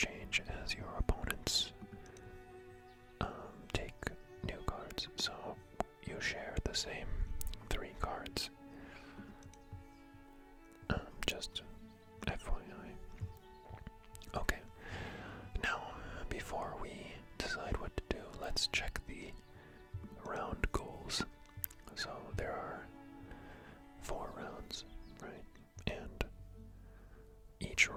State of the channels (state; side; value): identical; both; correlation 1.00